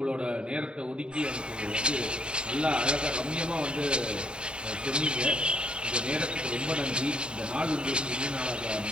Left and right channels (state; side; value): late; left; 0.051 ms